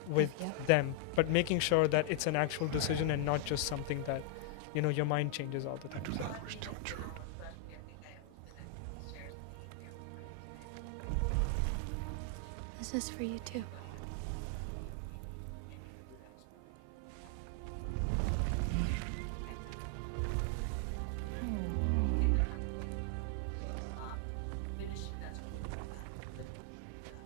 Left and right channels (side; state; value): both; different; correlation 0.00